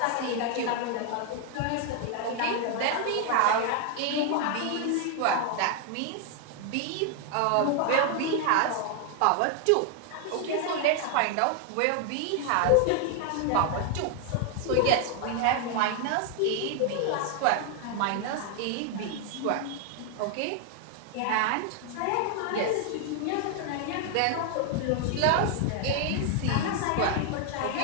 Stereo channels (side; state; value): both; different; correlation 0.00